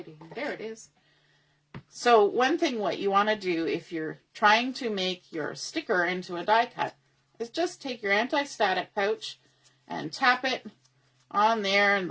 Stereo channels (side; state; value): both; identical; correlation 1.00